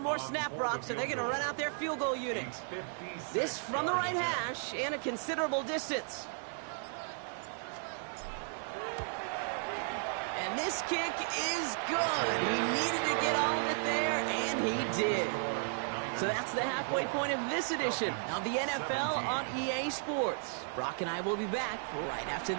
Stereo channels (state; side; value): silent; left; 55 dB below the other